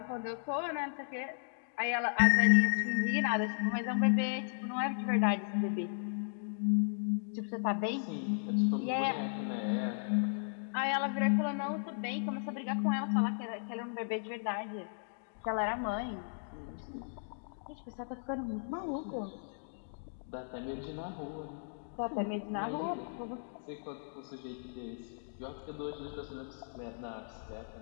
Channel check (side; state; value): right; silent; digital silence